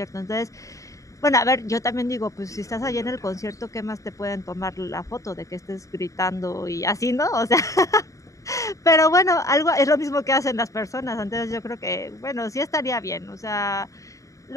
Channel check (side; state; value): right; late; 0.16 ms